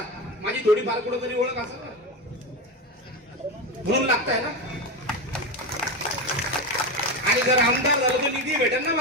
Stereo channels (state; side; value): normal; both; correlation 0.18